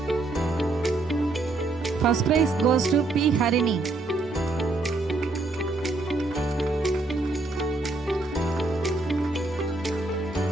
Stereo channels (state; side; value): quieter; left; 3.2 dB